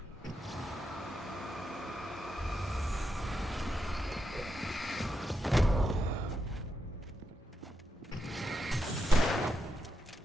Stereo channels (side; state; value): both; normal; correlation 0.85